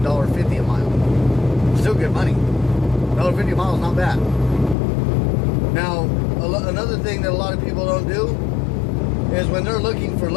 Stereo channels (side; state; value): right; drops out; at 4.8 s